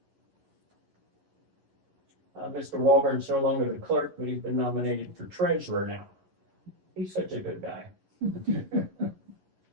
Mr. Walburn's no longer the clerk, but he's been nominated for treasurer now. He's such a good guy.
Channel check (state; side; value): late; left; 11 ms